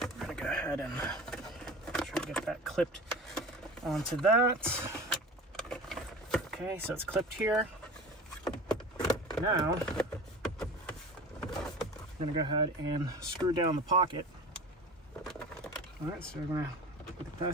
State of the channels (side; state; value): both; normal; correlation 0.36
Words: We're going to go ahead and try to get that clipped onto that. Okay, so it's clipped here. Now, I'm gonna go ahead and screw down the pocket. All right, so we're gonna put the